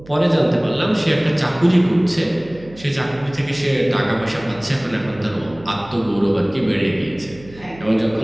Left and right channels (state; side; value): noise; right; hum, 21 dB below the sound